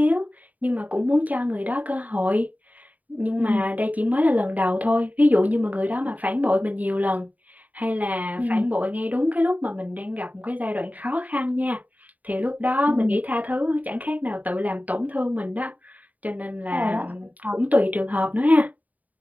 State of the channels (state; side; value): late; left; 0.074 ms